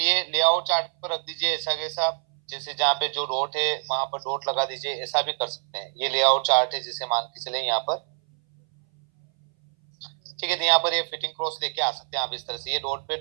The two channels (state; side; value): silent; left; 60 dB below the other